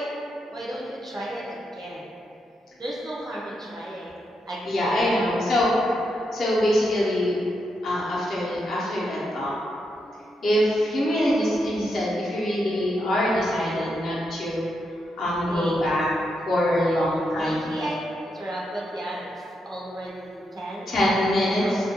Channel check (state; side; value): normal; both; correlation 0.83